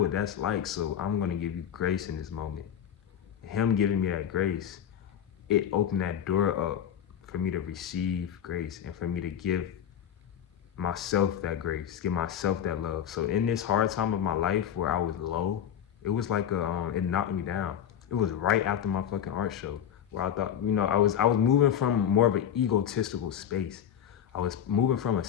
that's like, so I'm gonna give you grace in this moment. Him giving me that grace, it opened that door up for me to receive grace and for me to give myself that grace, give myself that love. So in this hard time of my life where I was low, it was like it knocked me down. It was right after my fucking art show where I thought, I was moving from more of an egotistical space. I was moving from a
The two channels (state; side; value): quieter; right; 9.4 dB